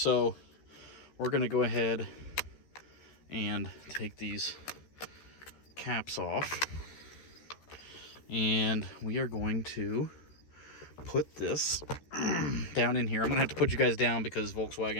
we're gonna go ahead and take these caps off, and we are going to put this down in here. I'm gonna have to put you guys down because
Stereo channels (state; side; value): late; right; 13 ms